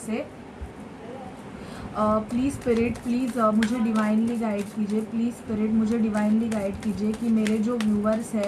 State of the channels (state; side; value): identical; both; correlation 1.00